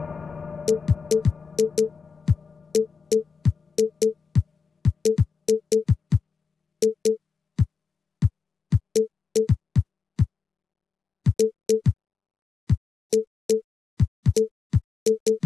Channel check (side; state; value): right; quieter; 5.2 dB